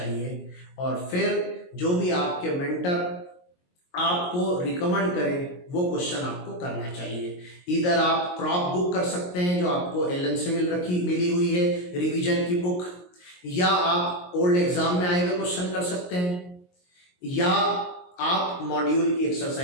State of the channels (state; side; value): late; right; 22 ms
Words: और फिर जो भी आपके मेंटर आपको रिकमेंड करें वो क्वेश्चन आपको करना चाहिए। इधर आप क्रॉप बुक कर सकते हैं जो आपको एलन से मिली हुई है, रिवीजन की बुक, या आप ओल्ड एग्जाम में आए हुए क्वेश्चन कर सकते हैं, या आप मॉड्यूल की